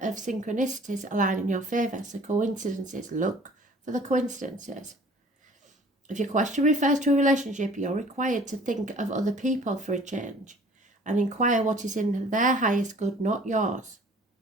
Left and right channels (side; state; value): both; normal; correlation 0.51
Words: of synchronicities align in your favour. So coincidences, look for the coincidences. If your question refers to a relationship, you're required to think of other people for a change and inquire what is in their highest good, not yours.